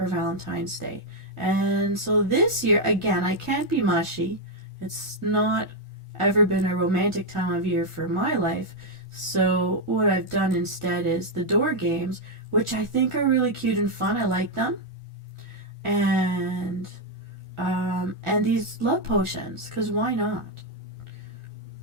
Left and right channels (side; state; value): left; late; 1.4 ms